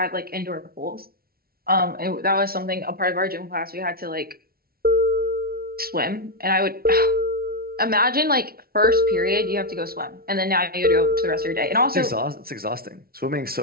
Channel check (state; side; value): late; left; 0.44 ms